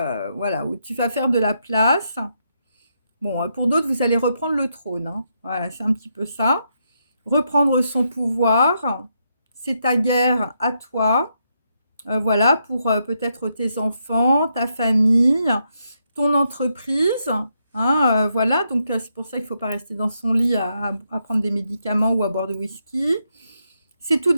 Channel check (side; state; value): both; inverted; correlation -0.80